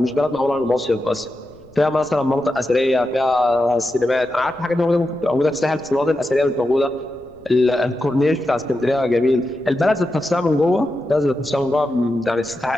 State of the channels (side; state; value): left; noise; rumble, 27 dB below the sound